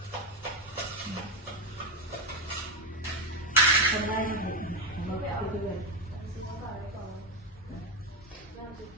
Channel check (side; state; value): both; normal; correlation 0.10